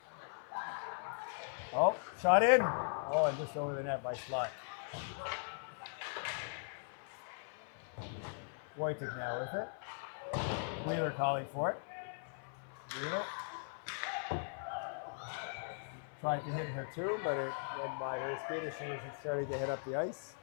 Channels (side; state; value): right; silent; 51 dB below the other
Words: Oh, shot in. Oh, and just over the net by Slot. Wojcik now with it. Wheeler calling for it. Wheeler. Tried to hit her too, but it went by her skate as she was starting to hit up the ice.